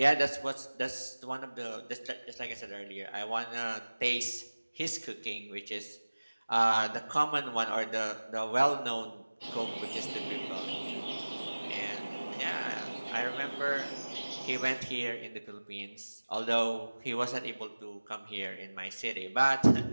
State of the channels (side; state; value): both; inverted; correlation -1.00